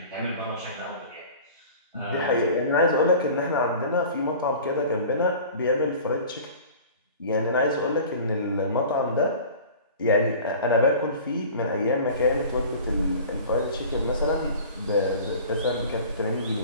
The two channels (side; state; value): both; inverted; correlation -0.42